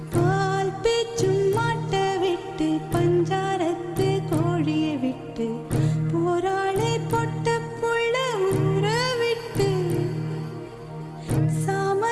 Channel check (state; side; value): identical; both; correlation 1.00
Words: பால் பேச்சும் மாட்ட விட்டு பஞ்சாரத்து கோழிய விட்டு போராளே பொட்ட புள்ள ஊற விட்டு